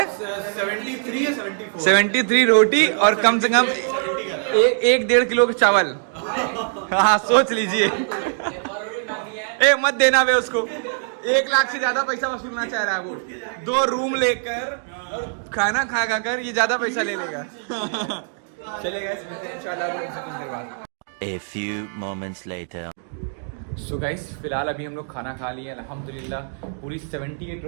73 या 74। 73 रोटी और कम से कम 1-1.5 किलो का चावल। हाँ सोच लीजिए। ए मत देना वे उसको, 1 लाख से ज्यादा पैसा वसूलना चाह रहा है वो। 2 रूम लेकर और खाना खा कर ये ज्यादा पैसा ले लेगा। चलिए गाइस मिलते हैं इंशाल्लाह कुछ देर बाद। A few moments later. So guys फिलहाल अभी हम लोग खाना खा लिए अल्हम्दुलिल्लाह। पूरी 78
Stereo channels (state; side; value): silent; left; digital silence